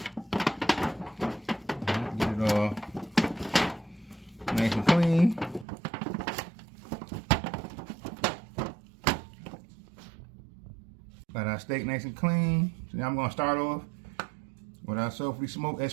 Get it all nice and clean. Got our steak nice and clean. So now I'm going to start off with our sulfurly smoked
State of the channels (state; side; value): drops out; left; at 5.7 s